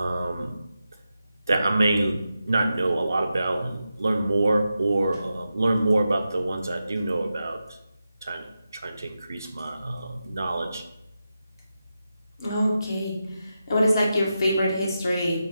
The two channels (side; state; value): both; inverted; correlation -0.89